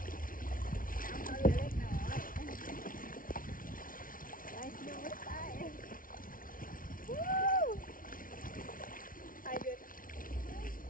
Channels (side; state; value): right; late; 0.40 ms